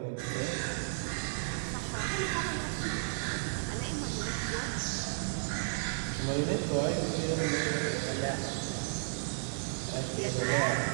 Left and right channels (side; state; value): left; silent; digital silence